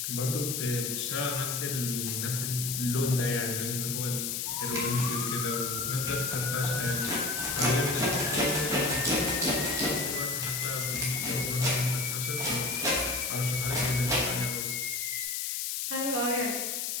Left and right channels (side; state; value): left; noise; hiss, 1 dB below the sound